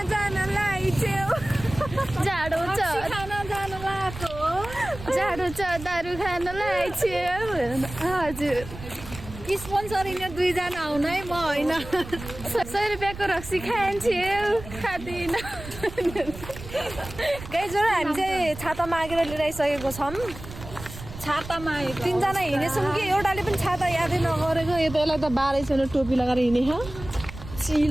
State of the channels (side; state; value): right; noise; rumble, 13 dB below the sound